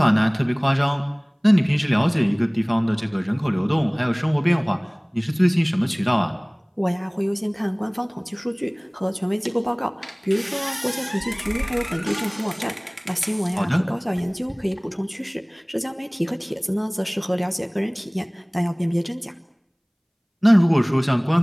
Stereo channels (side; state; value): both; identical; correlation 1.00